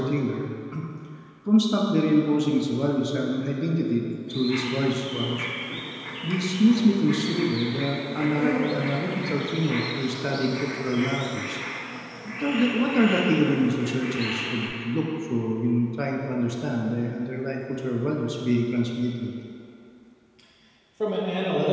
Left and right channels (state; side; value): identical; both; correlation 1.00